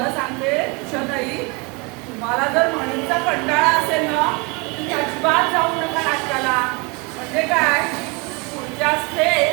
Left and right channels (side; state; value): left; quieter; 29.2 dB